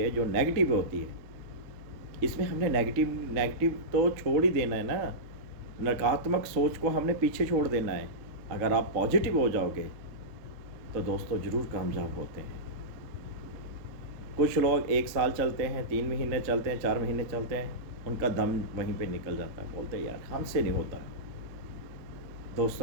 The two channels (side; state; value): left; late; 3.6 ms